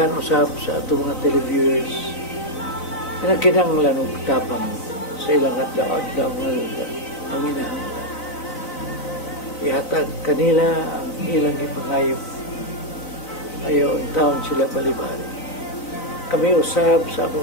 usap sa atong mga televiewers, na kinanglan og tapang sa ilang adlaw ngayon ang inahanglan. Ihatag kanila ang ilang ipangayo. Ayaw ang taon sila balibali. Kami usab sa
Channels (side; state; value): right; late; 3.9 ms